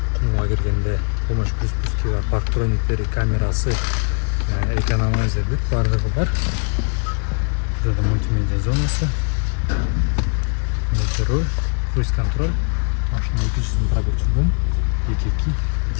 кумга киргенде, помощь при спуске бар, парктрониктери, камерасы, экономайзер деп баардыгы бар. Burada multimedya zonası, multirol, cruise control, машинanın tuşunun pробегчүгүн 2.2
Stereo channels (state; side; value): quieter; right; 39.2 dB